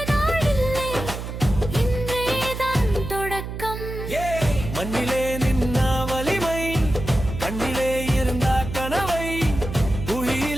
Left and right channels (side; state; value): right; noise; hum, 7 dB below the sound